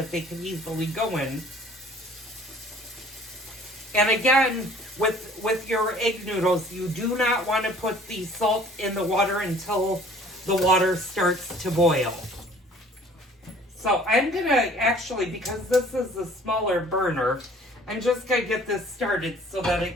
they can easily go in. And again, with your egg noodles, you do not want to put the salt in the water until the water starts to boil. So I'm going to actually, because this is a smaller burner, I'm just going to get this started so that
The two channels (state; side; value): normal; both; correlation 0.53